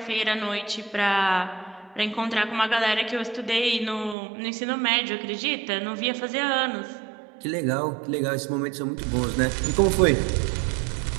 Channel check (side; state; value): left; drops out; at 4.2 s